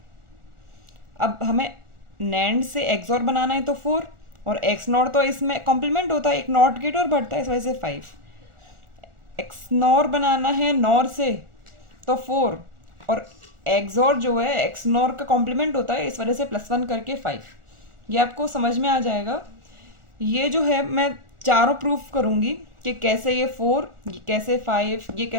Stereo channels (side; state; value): left; late; 1.4 ms